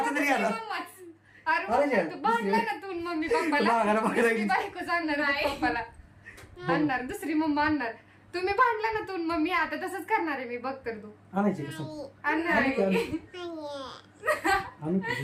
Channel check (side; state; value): both; identical; correlation 1.00